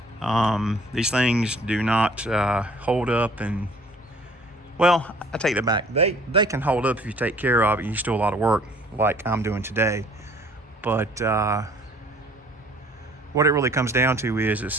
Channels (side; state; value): both; normal; correlation 0.54